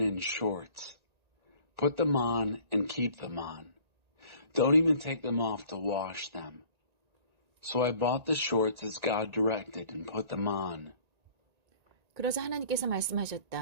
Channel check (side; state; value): left; late; 1.9 ms